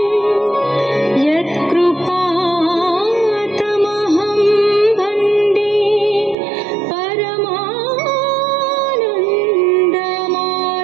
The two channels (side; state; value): left; drops out; at 6.4 s